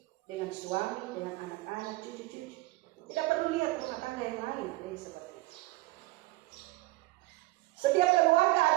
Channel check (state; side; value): quieter; left; 20.4 dB